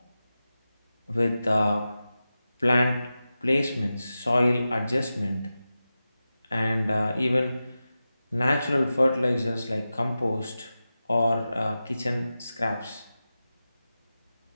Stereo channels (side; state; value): both; inverted; correlation -0.93